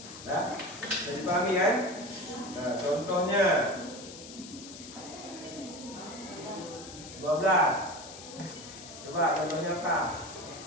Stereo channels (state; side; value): noise; left; hiss, 14 dB below the sound